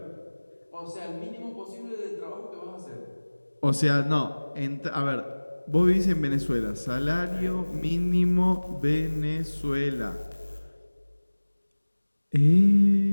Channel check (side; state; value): both; inverted; correlation -1.00